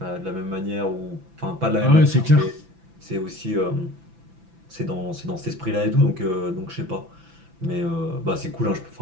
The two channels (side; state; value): left; late; 6.0 ms